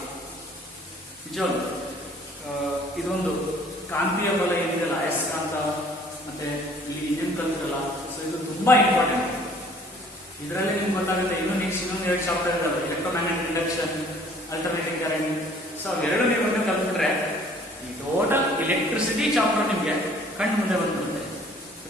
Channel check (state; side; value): normal; both; correlation 0.55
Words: ನಿಜವಾಗ್ಲು ಇದೊಂದು ಕಾಂತೀಯ ಬಲ ಏನಿದೆಲ್ಲ, ಅಯಸ್ಕಾಂತ ಮತ್ತೆ ಇಲ್ಲಿ ಏನ್ ಕಲ್ತಿರಲ್ಲ, ಸೊ ಇದು ತುಂಬಾ ಇಂಪಾರ್ಟೆಂಟ್. ಇದರಲ್ಲಿ ನಿಮ್ಗೆ ಗೊತ್ತಾಗುತ್ತೆ. ಇನ್ನೊಂದು 2 ಚಾಪ್ಟರ್ ಇದಾವೆ, electromagnetic induction, alternating current. So ಅವೆರಡು ನೀವು ಕಲ್ತ್ಬಿಟ್ರೆ ಈ ಟೋಟಲ್ ಎಲೆಕ್ಟ್ರಿಸಿಟಿ ಚಾಪ್ಟರ್ ನಿಮಗೆ ಕಣ್ಣು ಮುಂದೆ ಬಂದ್ಬಿಡುತ್ತೆ.